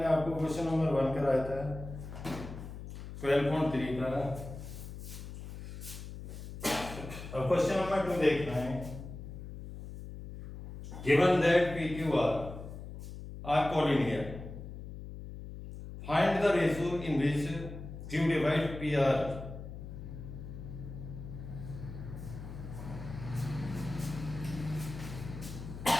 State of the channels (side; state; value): left; noise; hum, 10 dB below the sound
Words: आपको क्वेश्चन नंबर 1 कराया था 12.3 का। अब क्वेश्चन नंबर 2 देखना है। Given that P Q R collinear, find the ratio in which Q divide P R.